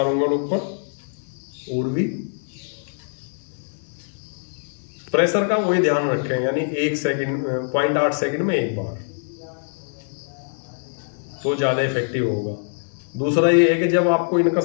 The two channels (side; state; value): right; silent; digital silence